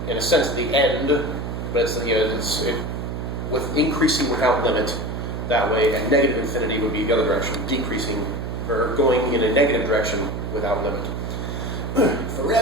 in a sense, the end, but it's with increasing without limit that way, and negative infinity would be the other direction, decreasing or going in a negative direction without limit.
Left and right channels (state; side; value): noise; right; hum, 5 dB below the sound